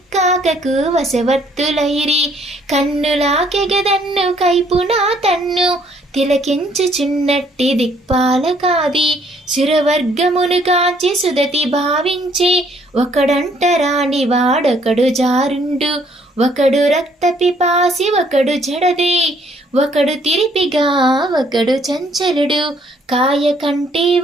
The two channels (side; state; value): both; normal; correlation 0.65